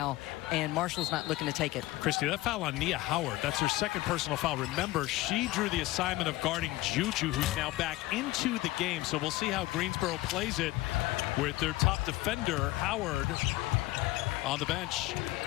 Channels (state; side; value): quieter; right; 18.2 dB